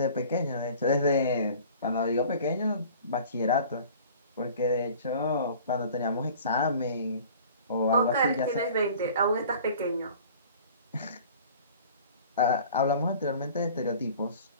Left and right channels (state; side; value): inverted; both; correlation -0.47